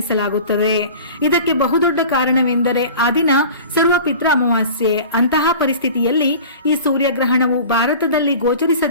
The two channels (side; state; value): both; inverted; correlation -0.40